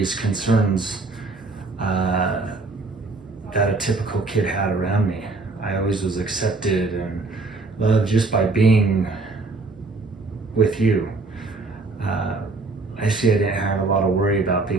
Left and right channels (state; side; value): quieter; left; 3.5 dB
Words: concerns that a typical kid had around me. I always was accepted and loved just by being with you. I see I didn't have a lot of worry about